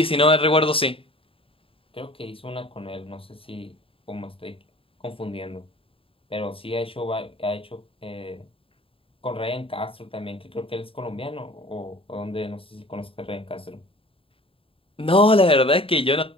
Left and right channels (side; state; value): right; late; 0.27 ms